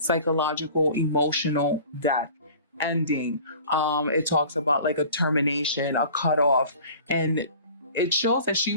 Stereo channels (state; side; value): inverted; both; correlation -0.44